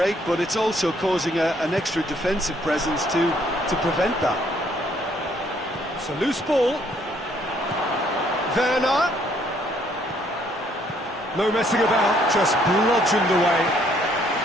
but it's also causing an extra defensive presence to prevent that. It's a loose ball. Werner. No messing about, just bludgeoned away.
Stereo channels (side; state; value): both; normal; correlation 0.66